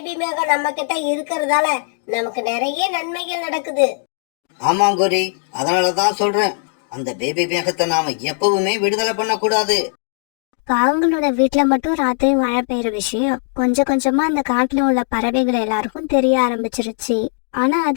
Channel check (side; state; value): right; silent; 57 dB below the other